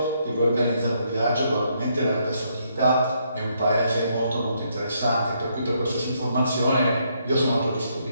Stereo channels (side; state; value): both; inverted; correlation -0.74